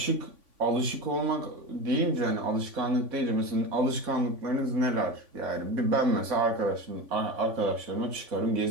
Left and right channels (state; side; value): late; left; 3.5 ms